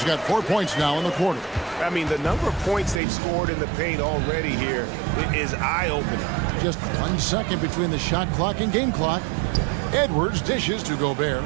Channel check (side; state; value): left; drops out; at 3.0 s